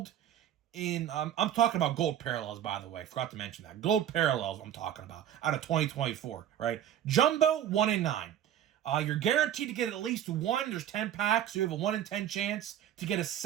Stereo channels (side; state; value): left; quieter; 10.7 dB